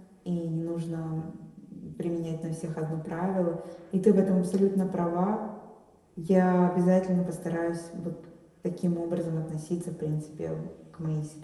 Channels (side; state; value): both; identical; correlation 1.00